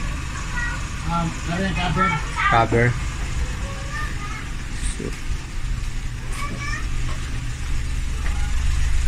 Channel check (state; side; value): identical; both; correlation 1.00